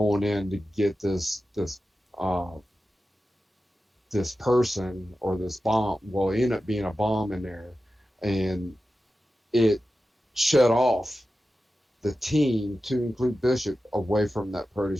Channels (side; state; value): both; normal; correlation 0.93